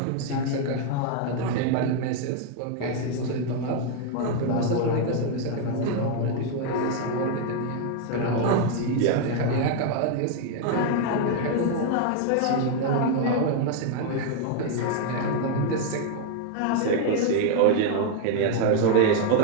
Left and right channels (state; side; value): different; both; correlation 0.00